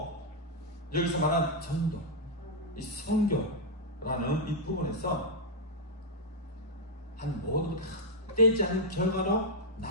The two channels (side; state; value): both; normal; correlation -0.05